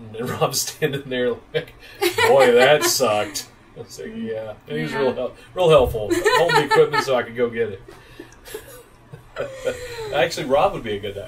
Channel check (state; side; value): identical; both; correlation 1.00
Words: and Rob's standing there like, boy, that sucked. I was like, yeah. And he was real helpful. Hold the equipment so I could go get it. Actually, Rob would be a good